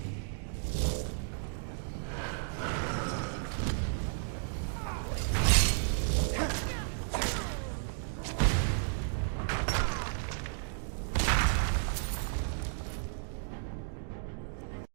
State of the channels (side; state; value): left; silent; digital silence